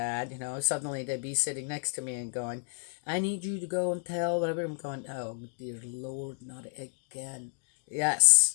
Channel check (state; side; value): silent; right; 57 dB below the other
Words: suddenly they'd be sitting next to me and going, I need you to go and tell whatever. I'm going, oh, dear Lord, not again.